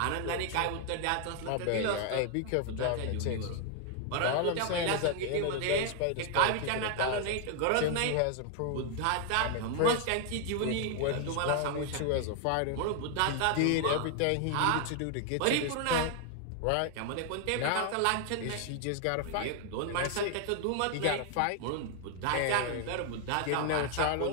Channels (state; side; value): different; both; correlation 0.00